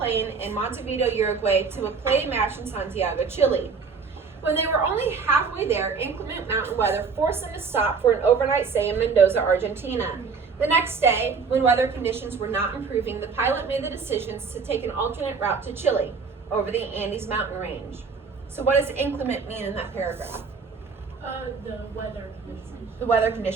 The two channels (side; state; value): left; quieter; 5.2 dB